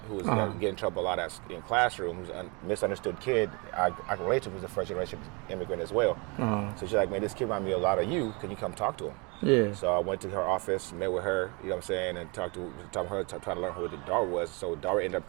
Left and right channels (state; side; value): quieter; left; 29.9 dB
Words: was getting in trouble a lot in classroom, who's a misunderstood kid. I can relate to him, who's a first-generation immigrant as well. So she's like, man, this kid reminds me a lot of you. Can you come talk to him? Yeah. So I went to her office, met with her, you know what I'm saying, and talked to her, trying to learn who Darwitt was. So Darwitt ended up